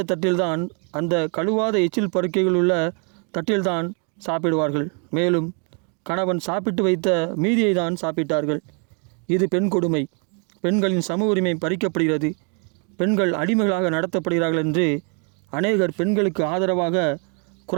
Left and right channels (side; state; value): left; quieter; 38.2 dB